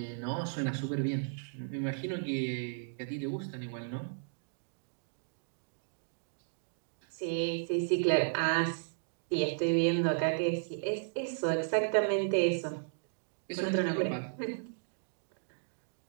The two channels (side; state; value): left; silent; digital silence